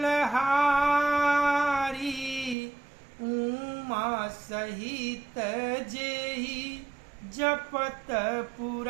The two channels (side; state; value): left; drops out; at 2.6 s